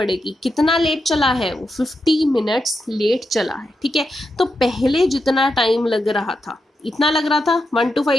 कितना लेट चला है वो, 50 मिनट्स लेट चला है, ठीक है। तो पहले जितना टाइम लग रहा था, इतना लग रहा था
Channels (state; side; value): normal; both; correlation 0.86